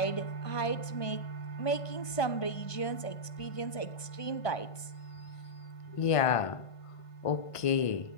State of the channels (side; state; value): right; late; 1.5 ms